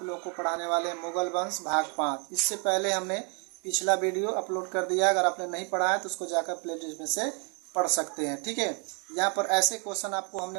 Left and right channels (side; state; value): left; quieter; 36.2 dB